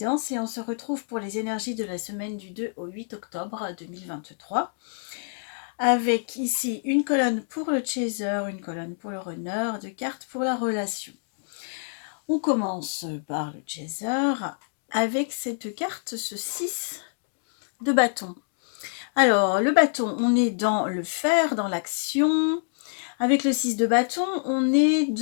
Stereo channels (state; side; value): silent; right; digital silence